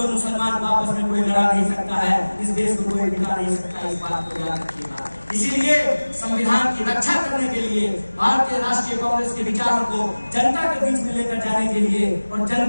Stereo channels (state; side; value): inverted; both; correlation -1.00